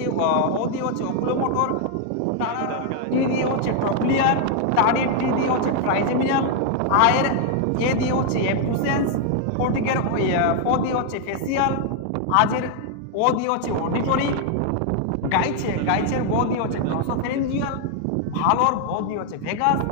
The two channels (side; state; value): both; different; correlation 0.00